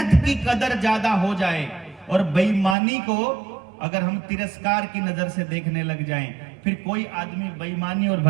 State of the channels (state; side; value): drops out; left; at 2.8 s